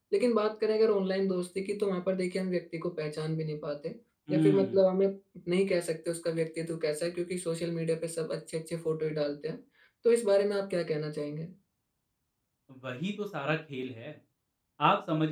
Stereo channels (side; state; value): both; identical; correlation 1.00